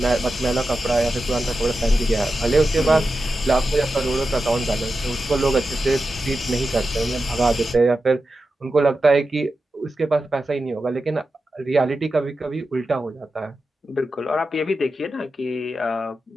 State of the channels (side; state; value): both; normal; correlation 0.91